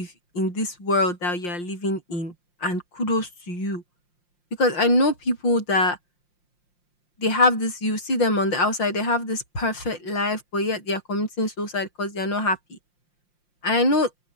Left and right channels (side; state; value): right; late; 5.7 ms